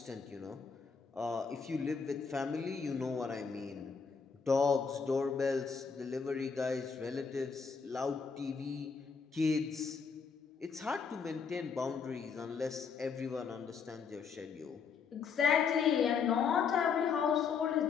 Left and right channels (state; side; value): quieter; right; 5.9 dB